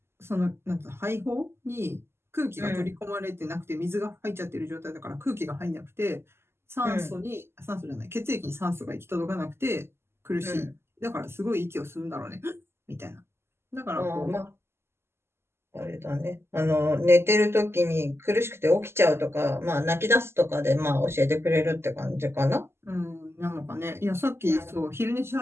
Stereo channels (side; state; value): left; late; 0.12 ms